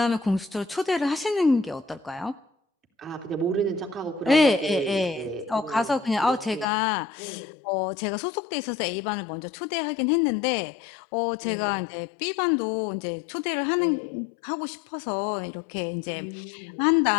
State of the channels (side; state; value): right; drops out; at 6.7 s